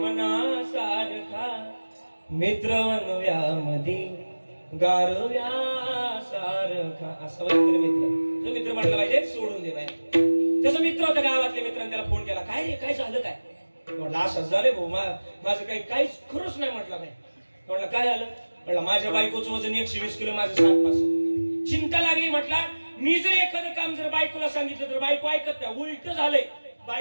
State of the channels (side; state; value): both; inverted; correlation -1.00